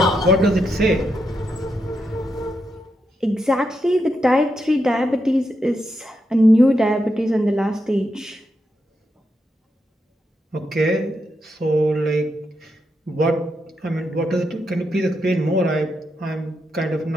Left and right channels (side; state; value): both; normal; correlation 0.83